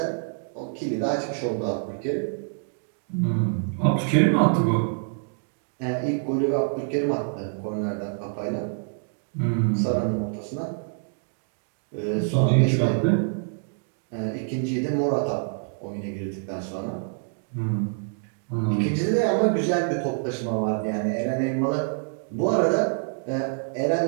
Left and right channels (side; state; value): left; silent; 61 dB below the other